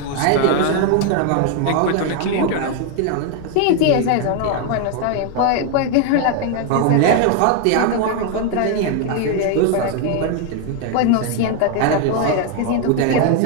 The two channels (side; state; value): both; different; correlation 0.01